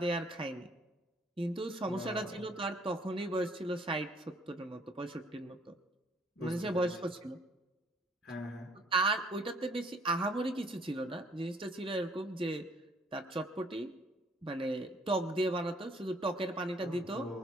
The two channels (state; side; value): normal; both; correlation 0.62